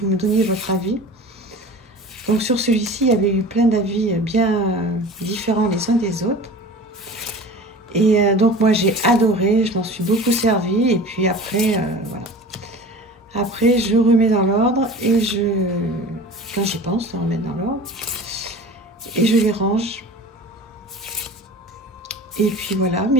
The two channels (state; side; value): normal; both; correlation 0.38